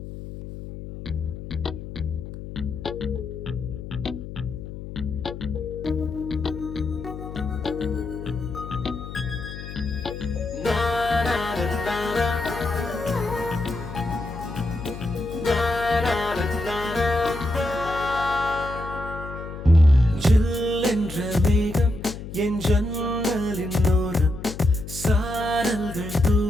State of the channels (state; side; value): noise; left; hum, 10 dB below the sound